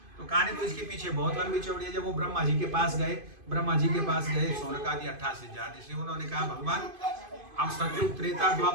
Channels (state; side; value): late; left; 2.5 ms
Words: तो कहानी तो इसके पीछे बहुत लंबी चौड़ी है। जब वो ब्रह्मा जी के पास गए, शौनक आदि 88 हजार ऋषि, उन्होंने कहा भगवान हम सतयुग, त्रेता,